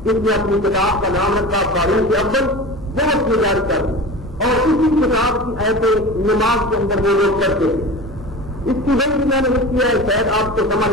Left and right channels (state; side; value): normal; both; correlation 0.33